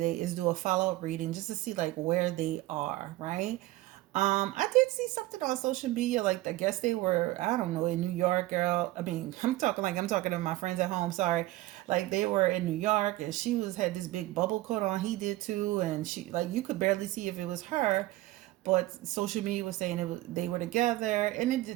is do a follow-up reading just to see like where they are, right? I did see something on social media, like I guess they were, I don't know, in New York, girl. I mean, I'm talking to my friends at home, sorry. Like they were in New York and she was had this big bubble coat on, he did too, and she like you could barely see if it was her, but social media was saying they were together,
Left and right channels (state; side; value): quieter; left; 17.5 dB